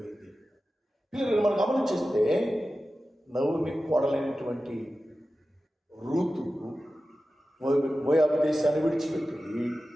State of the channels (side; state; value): both; normal; correlation 0.94